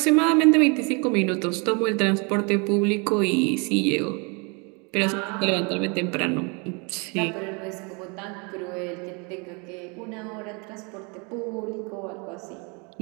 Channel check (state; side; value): quieter; left; 32.2 dB